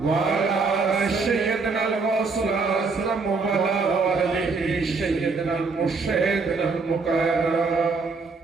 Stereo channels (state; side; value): quieter; left; 4.3 dB